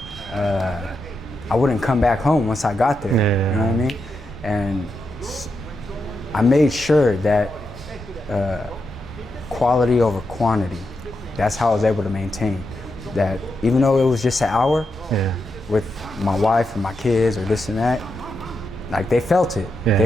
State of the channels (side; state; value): both; normal; correlation 0.85